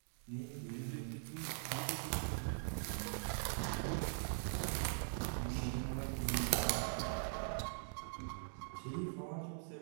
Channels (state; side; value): silent; left; digital silence